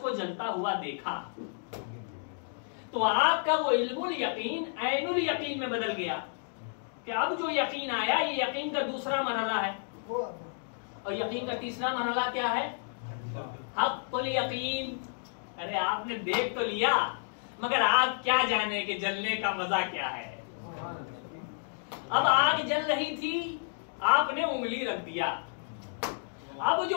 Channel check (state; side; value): silent; right; digital silence